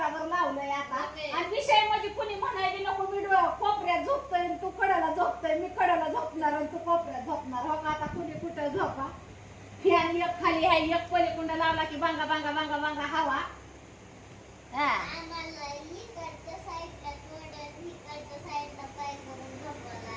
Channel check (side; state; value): both; identical; correlation 1.00